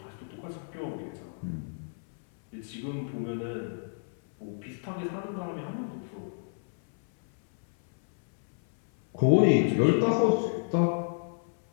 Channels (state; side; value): silent; right; 58 dB below the other